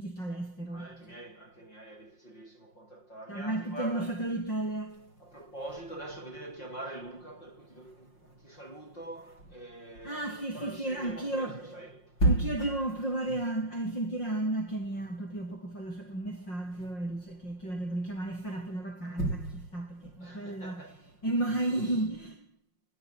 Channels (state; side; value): late; right; 5.6 ms